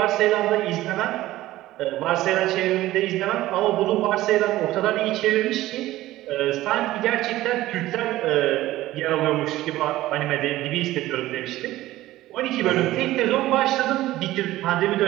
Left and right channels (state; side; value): quieter; left; 16.0 dB